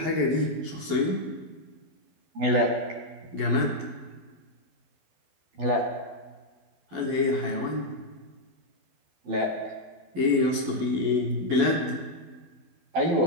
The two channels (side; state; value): left; late; 11 ms